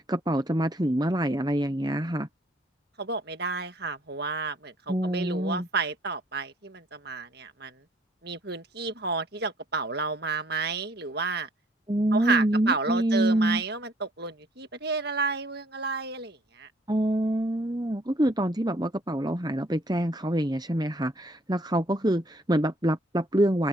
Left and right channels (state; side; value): normal; both; correlation 0.62